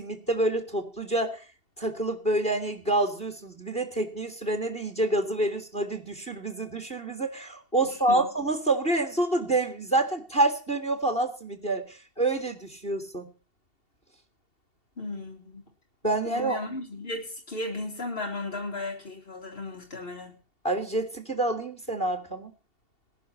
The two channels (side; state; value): right; late; 2.7 ms